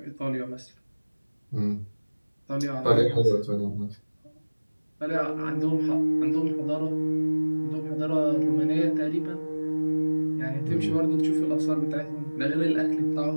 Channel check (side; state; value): both; inverted; correlation -1.00